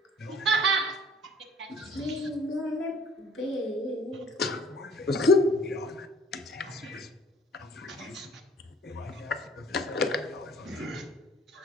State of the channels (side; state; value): both; normal; correlation 0.53